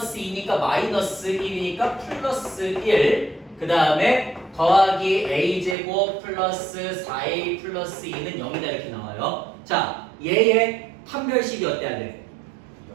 2니까 마이너스 1이니까 플러스 1 그 다음에 더하기 a제곱 플러스 4a 플러스 2는 0이다 이렇게 나와요. 자 얘의 판별식이 어때야 돼?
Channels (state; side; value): drops out; left; at 5.8 s